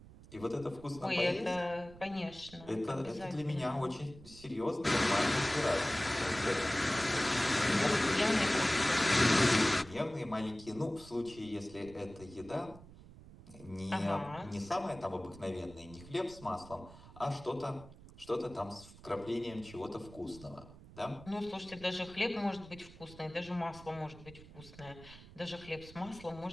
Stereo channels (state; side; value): noise; right; rumble, 18 dB below the sound